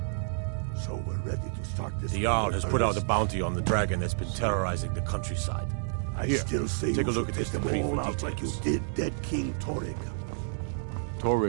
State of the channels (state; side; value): silent; left; 56 dB below the other